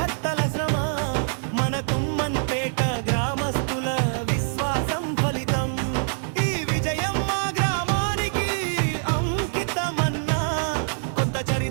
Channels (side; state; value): left; silent; 62 dB below the other